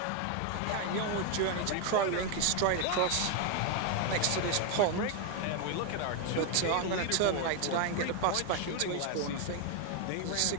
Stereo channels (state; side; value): different; both; correlation 0.01